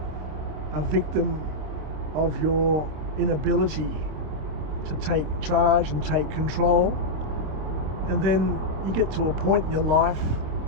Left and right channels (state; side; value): late; left; 26 ms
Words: of your inability to take charge and take control. And then you get to a point in your life